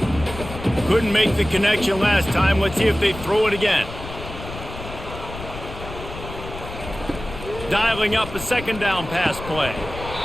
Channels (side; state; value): left; noise; rumble, 11 dB below the sound